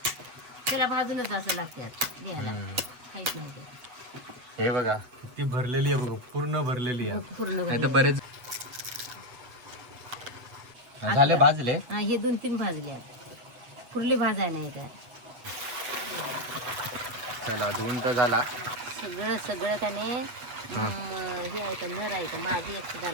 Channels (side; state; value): left; late; 8.0 ms